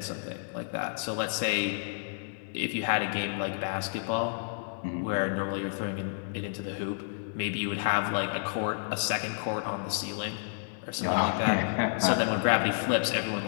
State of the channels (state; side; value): silent; right; 58 dB below the other